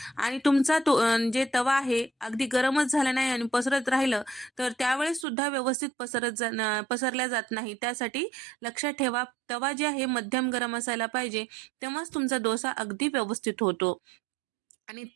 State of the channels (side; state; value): left; drops out; at 5.2 s